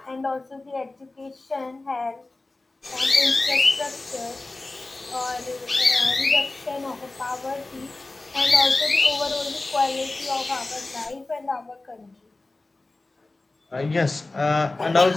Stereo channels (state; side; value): quieter; right; 3.1 dB